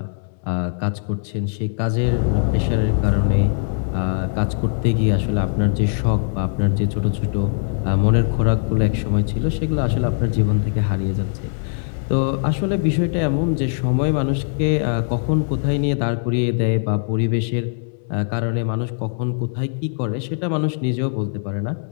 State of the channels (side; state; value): right; silent; 65 dB below the other